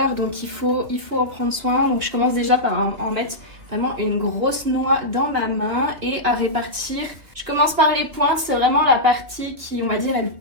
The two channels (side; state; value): left; late; 2.7 ms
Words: donc il faut en prendre soin. Donc je commence déjà par en mettre vraiment une grosse noix dans ma main et à répartir. Je commence par les pointes, c'est vraiment la partie qui on va dire est le